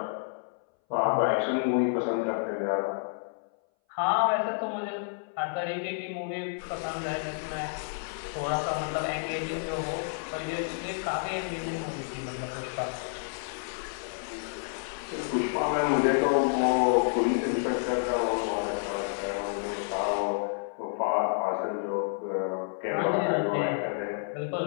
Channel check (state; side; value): silent; right; 58 dB below the other